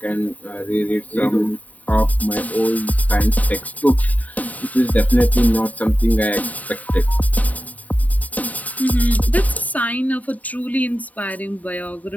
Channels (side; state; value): right; late; 0.073 ms